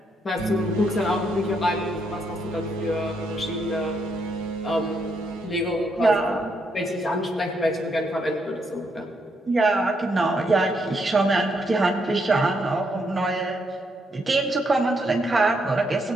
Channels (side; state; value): both; normal; correlation 0.77